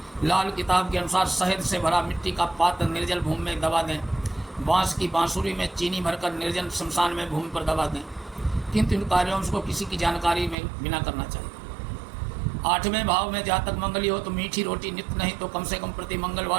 लाल किताब के अनुसार शहद से भरा मिट्टी का पात्र निर्जल भूमि में दबा दें। बांस की बांसुरी में चीनी भरकर निर्जन शमशान में भूमि पर दबा दें, किंतु इन कार्यों को किसी की जानकारी में बिना करना चाहिए। 8वें भाव में जातक मंगली हो तो मीठी रोटी नित्य नहीं तो कम से कम प्रति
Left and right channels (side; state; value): left; drops out; at 10.6 s